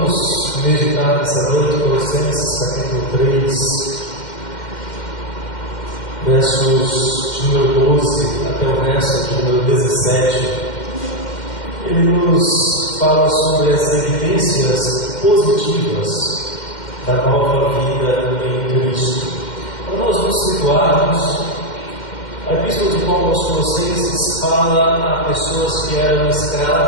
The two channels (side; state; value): right; late; 2.1 ms